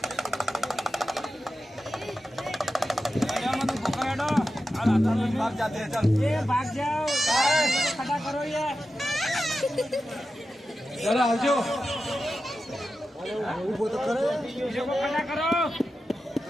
भाग जाते हैं, चल ये भाग जाओ, खड़ा करो ये। जरा आजो वो तो करो, खड़ा करो।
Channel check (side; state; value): both; normal; correlation 0.92